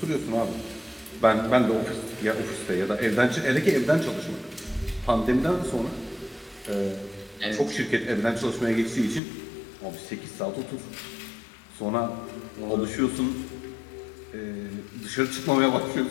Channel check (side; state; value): right; drops out; at 9.2 s